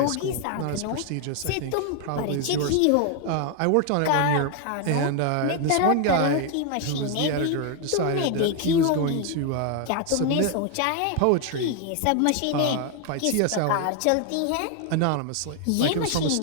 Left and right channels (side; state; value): both; different; correlation 0.01